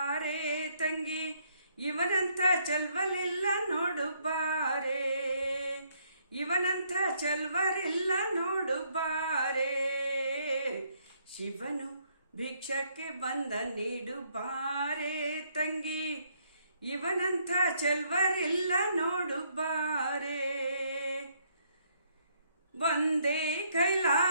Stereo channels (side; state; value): both; inverted; correlation -0.70